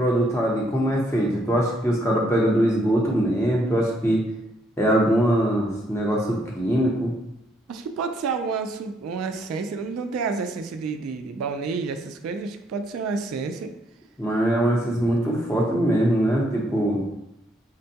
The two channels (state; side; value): normal; both; correlation 0.71